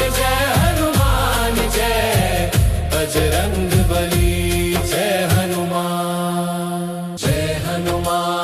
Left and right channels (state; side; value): identical; both; correlation 1.00